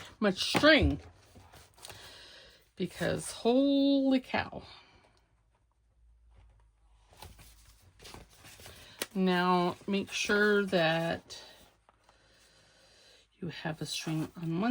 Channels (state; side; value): identical; both; correlation 1.00